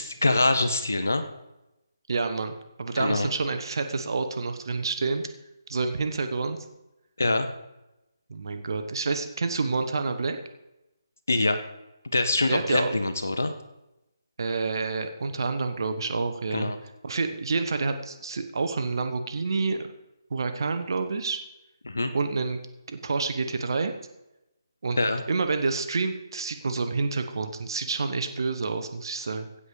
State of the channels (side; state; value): both; inverted; correlation -0.82